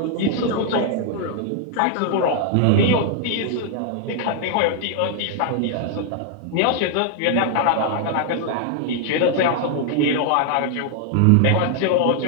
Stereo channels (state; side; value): different; both; correlation 0.00